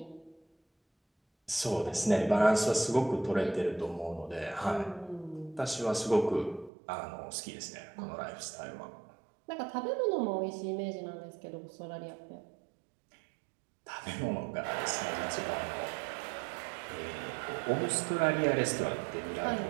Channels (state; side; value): drops out; left; at 6.7 s